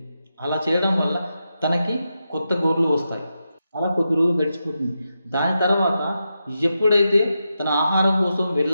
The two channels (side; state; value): both; inverted; correlation -0.88